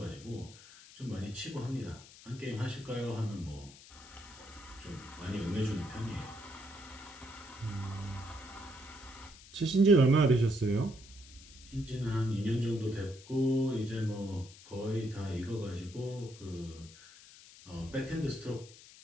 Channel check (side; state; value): left; noise; hiss, 19 dB below the sound